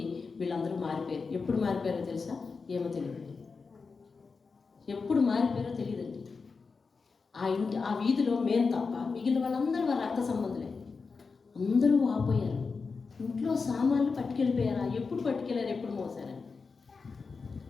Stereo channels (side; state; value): right; quieter; 4.7 dB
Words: వీళ్ళందరూ మారిపోయారు. ఎప్పుడు మారిపోయారో తెలుసా? ఏమో తెలియదు. ఎప్పుడు మారిపోయారో తెలియదండి. ఆ వీధిలో మేము తప్ప మిగిలిన వాళ్ళందరూ వారి రక్త సంబంధులే. అందరూ ఆపోయారు. ఇంట్లో సామాన్లు పట్టుకెళ్ళిపోయారా? ఎప్పుడు పట్టుకెళ్ళారు, ఎప్పుడు మోసారా?